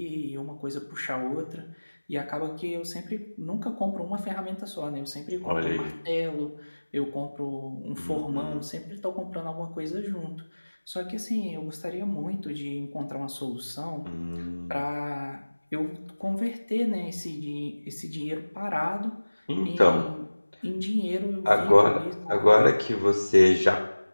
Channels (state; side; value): inverted; both; correlation -1.00